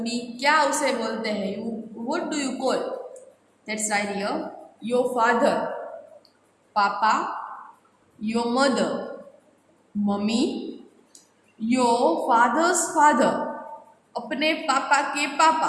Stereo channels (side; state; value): both; identical; correlation 1.00